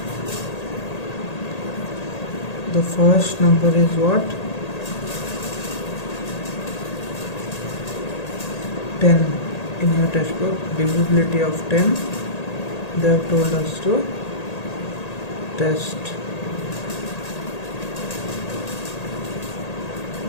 The first number is what? 10. In your textbook, divisibility of 10, they have told us to test.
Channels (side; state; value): right; late; 1.8 ms